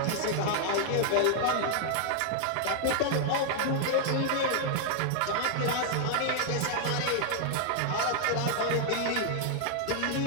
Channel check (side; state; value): both; different; correlation 0.00